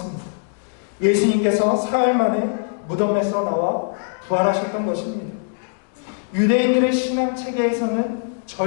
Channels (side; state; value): right; silent; digital silence